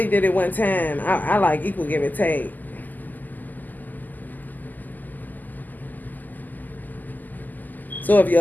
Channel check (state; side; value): late; right; 0.084 ms